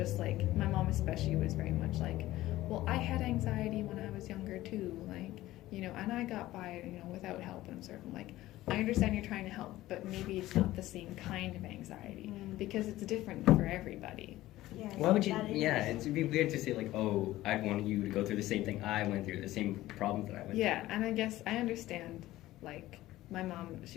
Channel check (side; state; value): right; quieter; 16.1 dB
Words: like, my mom especially was very much like, well, I had anxiety when I was younger too, like, and I got by, without help. And I'm sort of like, I understand you're trying to help, but maybe it's not the same kind of anxiety, because it's different for everybody. Yeah, why would you? Yeah, it'd be weird to say like, oh, I'd want you to go through the same thing I went through, the same problems that I went through. Yeah, and I guess I understand like my mom,